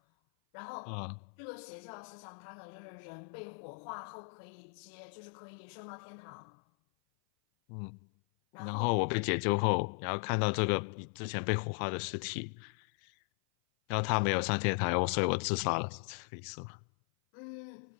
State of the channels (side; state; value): right; silent; 53 dB below the other